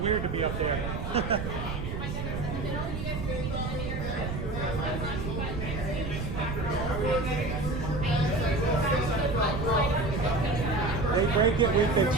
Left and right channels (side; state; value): right; noise; rumble, 4 dB below the sound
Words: to be up there. They break it, we fix